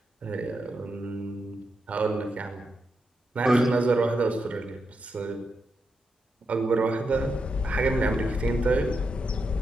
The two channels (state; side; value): normal; both; correlation 0.85